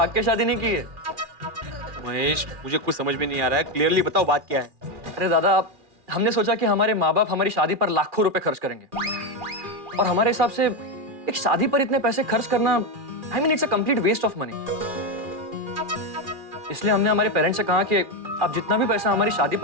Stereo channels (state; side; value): late; left; 2.4 ms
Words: के शादी नहीं की है। महेश, मुझे कुछ समझ में नहीं आ रहा है, क्लियरली बताओ बात क्या है। अरे दादा, हमने सोचा कि हमारे माँ बाप हमारी शादी पर लाखों रुपए खर्च करेंगे, और हमारे हिसाब से एक शादी पर इतने पैसे खर्च करना, I mean it's a complete waste of money. इसलिए हमने हमारे पेरेंट्स से कहा कि आप जितना भी पैसा हमारी शादी